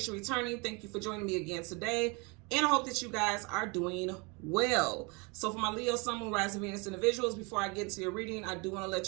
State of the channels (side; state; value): left; quieter; 29.7 dB